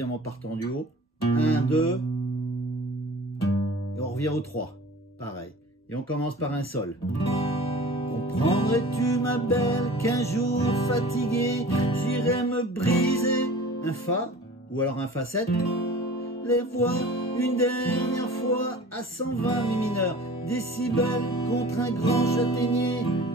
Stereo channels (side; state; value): both; normal; correlation 0.42